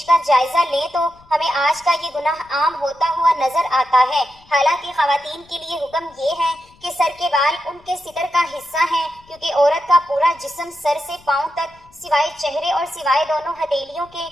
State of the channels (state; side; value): noise; left; rumble, 28 dB below the sound